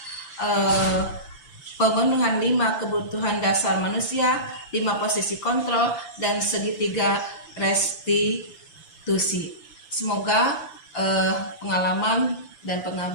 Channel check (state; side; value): late; right; 5.9 ms